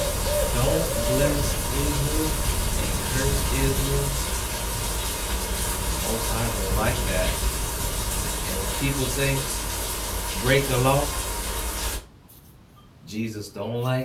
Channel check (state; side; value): identical; both; correlation 1.00